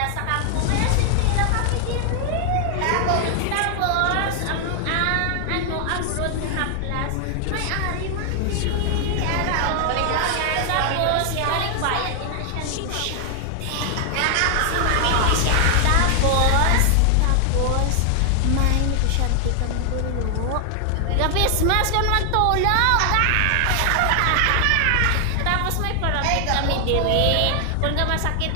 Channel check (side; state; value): both; different; correlation 0.00